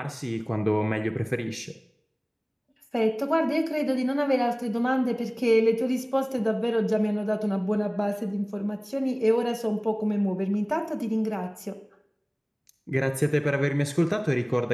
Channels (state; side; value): identical; both; correlation 1.00